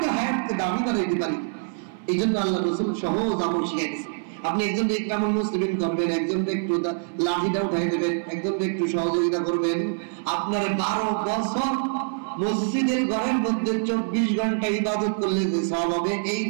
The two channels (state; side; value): silent; left; 59 dB below the other